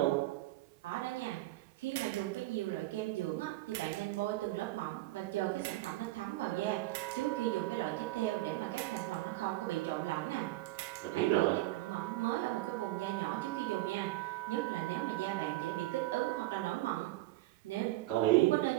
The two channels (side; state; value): left; quieter; 17.9 dB